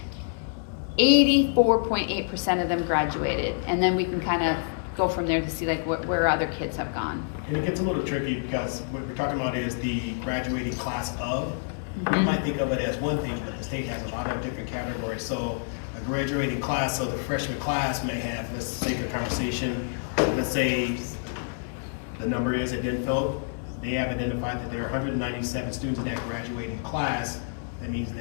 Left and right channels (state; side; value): silent; right; 60 dB below the other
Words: 84.8% of them graduated, and then we can kind of go from there to see like where other kids have gone. And it gets a little tricky because what we're talking about is the graduating class of. You might think of it as one thing, but the state has a lot of different categories. So a graduating class, so the freshman class may have, let's take a conversation, let's say the number is at Denfeld. They have identified that there are 197 students in that graduating class. That means